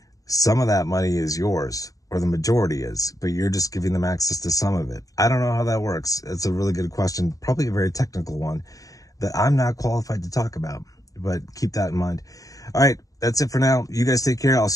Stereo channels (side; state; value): right; late; 0.17 ms